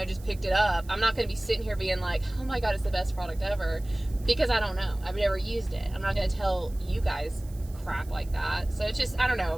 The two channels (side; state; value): right; noise; hiss, 23 dB below the sound